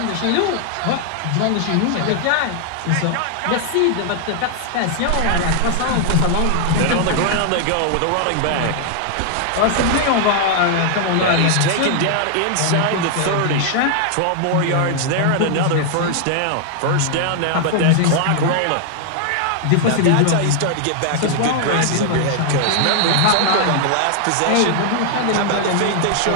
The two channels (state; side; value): different; both; correlation 0.00